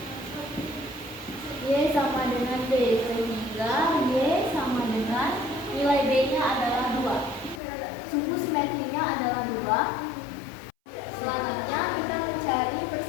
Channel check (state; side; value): drops out; right; at 7.6 s